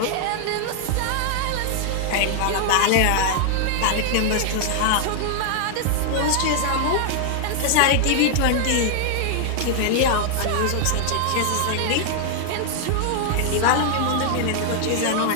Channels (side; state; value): both; different; correlation 0.00